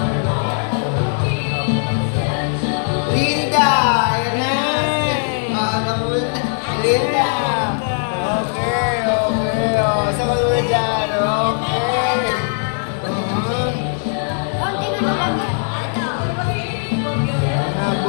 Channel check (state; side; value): silent; right; 63 dB below the other